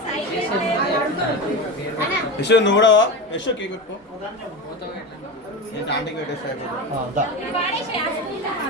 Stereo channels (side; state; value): both; normal; correlation 0.23